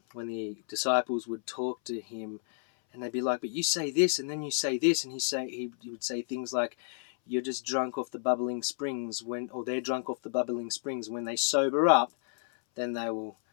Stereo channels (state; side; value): silent; right; 57 dB below the other